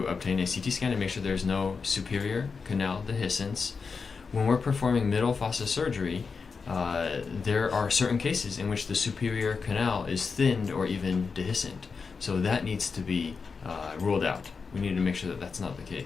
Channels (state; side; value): quieter; right; 5.1 dB